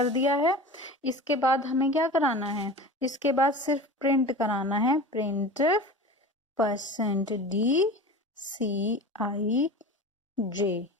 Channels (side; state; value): both; normal; correlation 0.34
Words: दिया है। इसके बाद हमें क्या कराना है, इसके बाद सिर्फ प्रिंट कराना है, प्रिंट %d ci j।